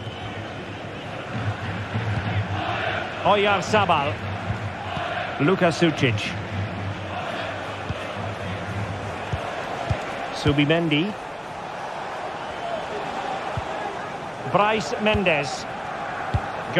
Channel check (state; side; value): identical; both; correlation 1.00